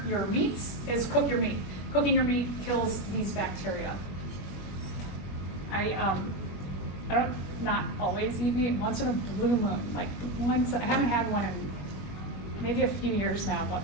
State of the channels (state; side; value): late; right; 21 ms